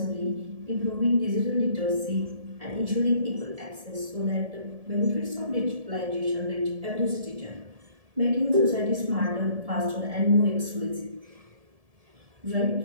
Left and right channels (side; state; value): left; late; 1.7 ms